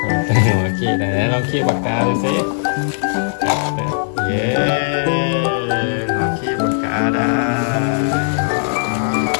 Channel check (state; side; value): silent; right; digital silence